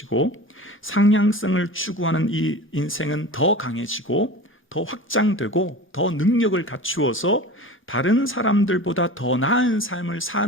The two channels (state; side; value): normal; both; correlation 0.35